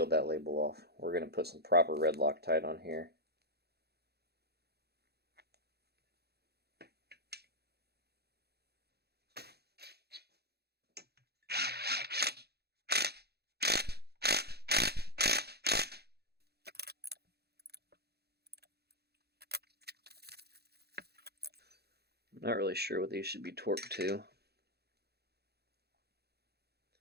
that label off. We're going to put some proper red Loctite on here. Not really sure what these should be torqued to.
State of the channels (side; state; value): left; late; 0.47 ms